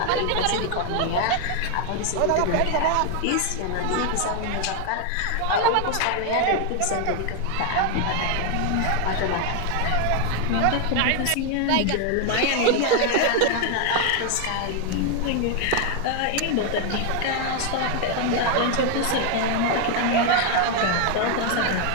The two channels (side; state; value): both; different; correlation 0.00